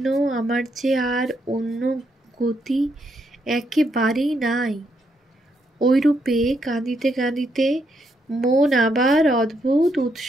আমার যে আর অন্য গতি একেবারেই নাই। ওইরূপে কাঁদিতে কাঁদিতে মন আবার অদ্ভুত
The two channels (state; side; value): normal; both; correlation 0.77